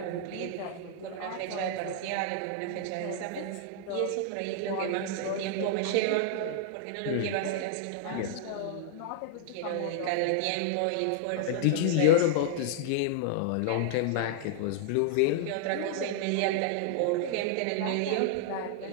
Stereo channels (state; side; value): different; both; correlation -0.01